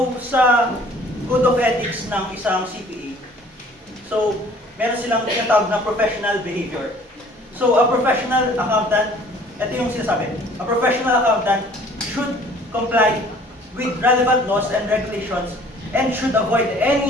sa Code of Ethics ng isang CPA, so, meron silang tinatawag na professional behavior. So, a professional accountant, ito yung sinasabi, a professional accountant should comply with relevant laws and regulations and should avoid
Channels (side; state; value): both; normal; correlation 0.53